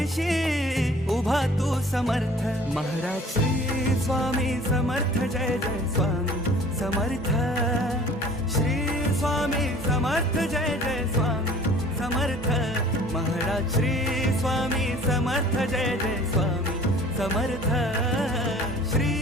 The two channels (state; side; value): normal; both; correlation 0.49